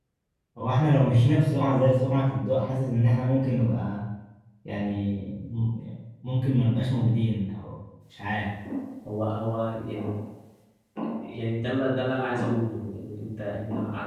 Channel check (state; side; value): identical; both; correlation 1.00